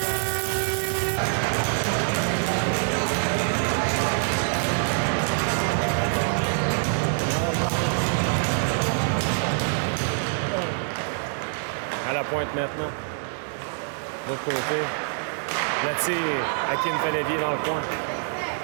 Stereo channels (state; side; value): silent; left; 62 dB below the other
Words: À la pointe maintenant. De l'autre côté. Le tir, Hakim fait dévier dans le coin.